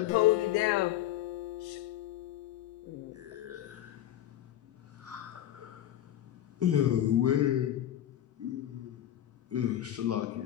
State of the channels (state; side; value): quieter; right; 12.3 dB